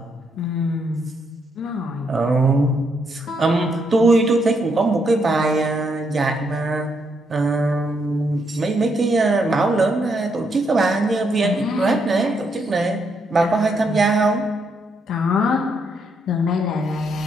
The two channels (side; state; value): both; normal; correlation 0.77